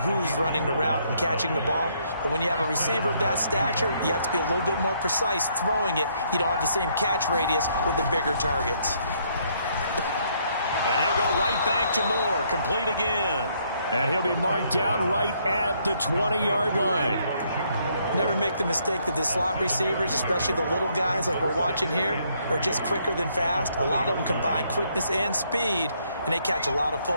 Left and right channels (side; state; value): both; inverted; correlation -0.70